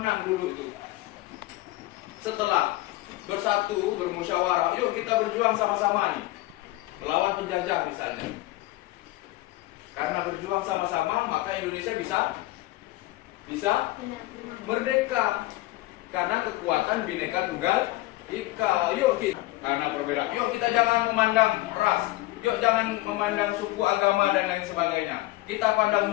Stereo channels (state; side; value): quieter; right; 18.6 dB